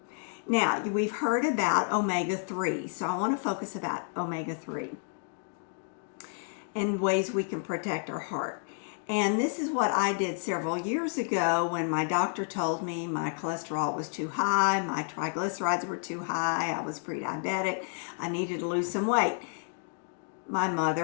Now, we've heard about omega-3, so I want to focus about omega-3 and ways we can protect our heart. And this is what I did several years ago when my doctor told me my cholesterol was too high, my triglycerides were too high, I was pre-diabetic, I needed to lose some weight. My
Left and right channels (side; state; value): right; silent; 58 dB below the other